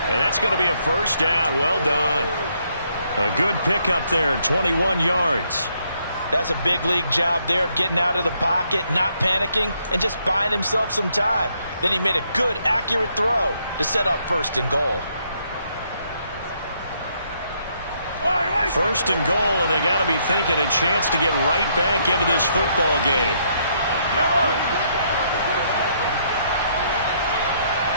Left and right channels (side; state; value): both; inverted; correlation -0.72